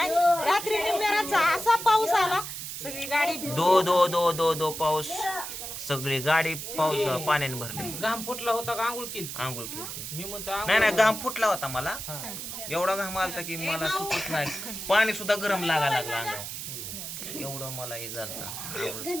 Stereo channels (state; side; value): noise; right; hiss, 7 dB below the sound